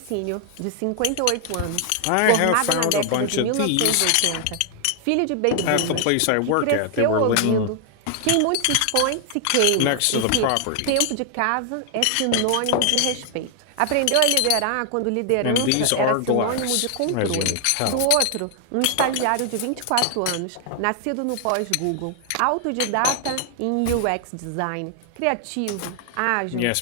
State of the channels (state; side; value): different; both; correlation 0.00